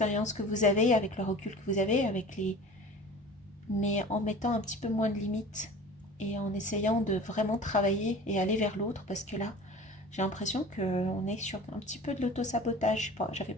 que vous avez, avec le recul que vous avez, avec les... mais en mettant un petit peu moins de limites et en essayant de vraiment travailler et aller vers l'autre parce que là, j'ai l'impression qu'on est sur un petit peu de l'autosabotage. J'avais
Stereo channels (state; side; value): normal; both; correlation 0.40